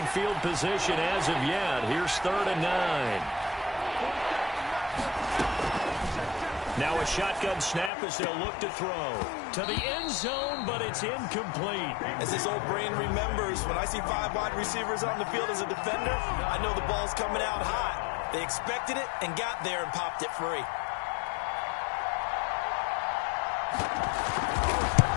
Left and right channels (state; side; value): drops out; right; at 7.9 s